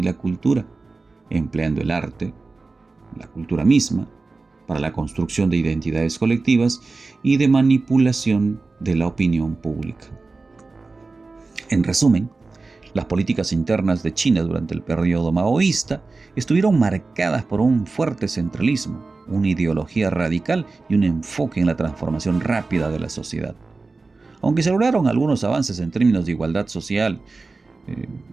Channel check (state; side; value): quieter; left; 3.8 dB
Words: la cultura, empleando el arte, la cultura misma, para la construcción de identidades colectivas y de manipulación de la opinión pública. En resumen, las políticas internas de China durante el periodo maoísta estuvieron marcadas por un fuerte centralismo, una ideología radical y un enfoque en la transformación rápida de la sociedad. Aunque se lograron algunos avances en términos de igualdad social,